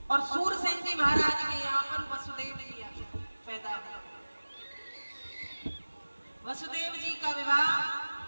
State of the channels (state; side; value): inverted; both; correlation -1.00